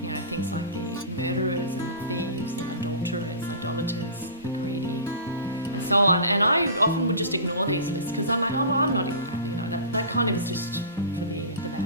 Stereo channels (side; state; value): both; inverted; correlation -0.35